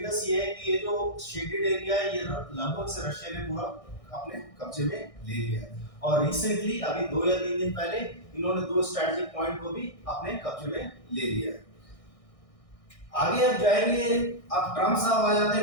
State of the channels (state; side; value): late; right; 1.6 ms